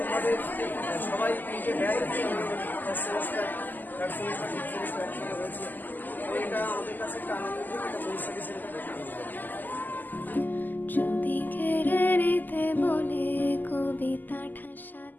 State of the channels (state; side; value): late; right; 0.086 ms